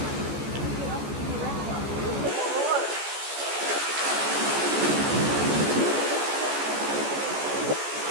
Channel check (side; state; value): left; late; 14 ms